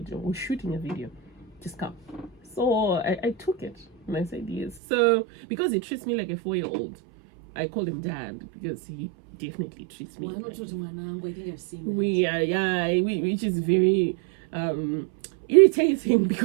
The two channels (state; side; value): drops out; left; at 4.8 s